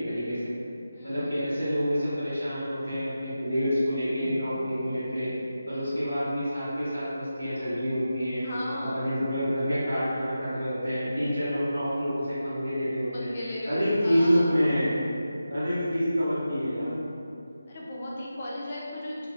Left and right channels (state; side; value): inverted; both; correlation -0.92